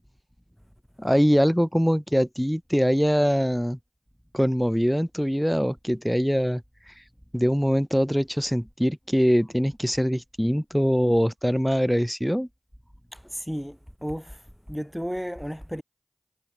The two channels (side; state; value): both; identical; correlation 1.00